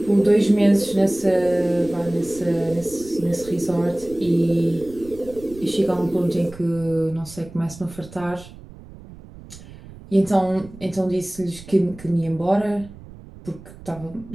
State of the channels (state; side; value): noise; right; rumble, 18 dB below the sound